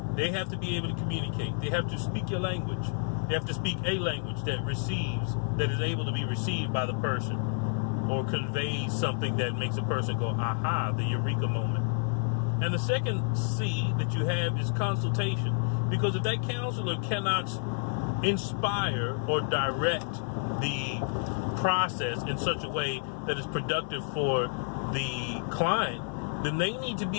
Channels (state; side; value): silent; right; 58 dB below the other